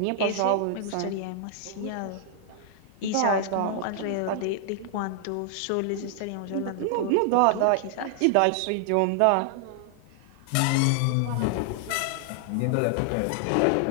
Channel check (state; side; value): different; both; correlation 0.00